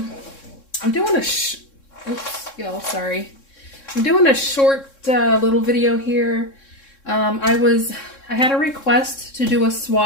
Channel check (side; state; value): right; late; 3.6 ms